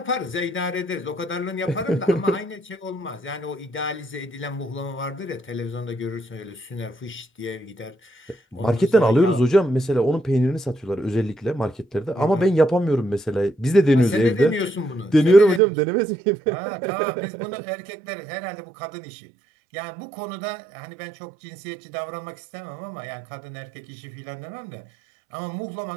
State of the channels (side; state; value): left; drops out; at 15.6 s